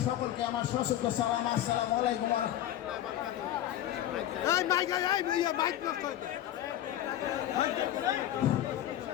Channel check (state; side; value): quieter; right; 12.4 dB